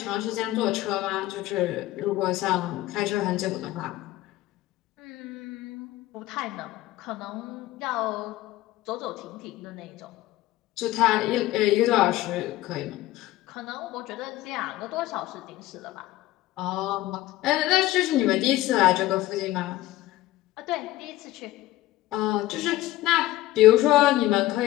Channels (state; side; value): quieter; right; 16.1 dB